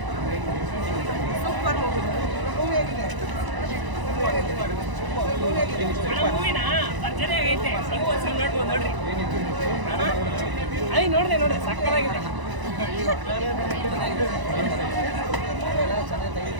ನೋಡಿದೆ ಸಕ್ಕತ್ತಾಗಿದೆ. ಚೆನ್ನಾಗಿ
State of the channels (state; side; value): late; left; 1.0 ms